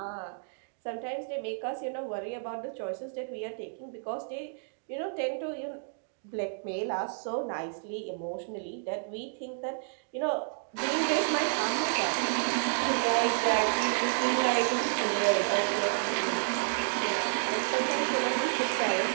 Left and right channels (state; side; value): silent; left; digital silence